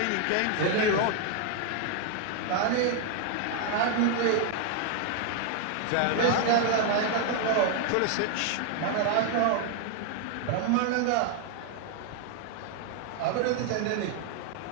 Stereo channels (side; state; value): both; different; correlation 0.00